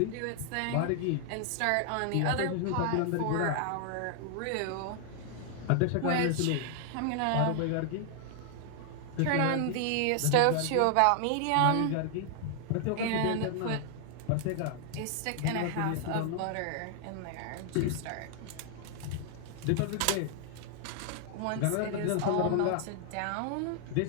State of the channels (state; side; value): different; both; correlation 0.00